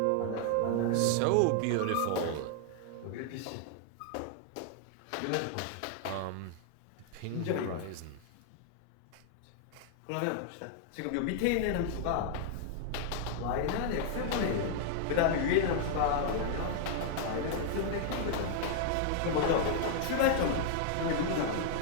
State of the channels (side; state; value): both; different; correlation -0.01